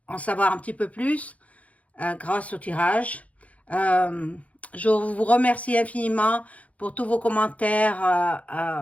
en savoir un petit peu plus grâce au tirage. Euh, je vous remercie infiniment pour tous vos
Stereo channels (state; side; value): late; right; 0.067 ms